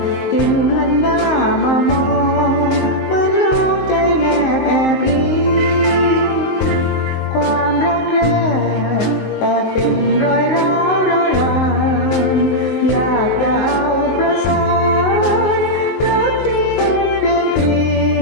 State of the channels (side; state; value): right; late; 19 ms